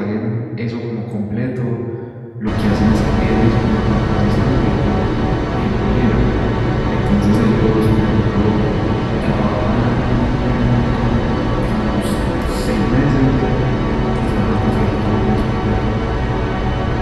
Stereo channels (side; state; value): both; identical; correlation 1.00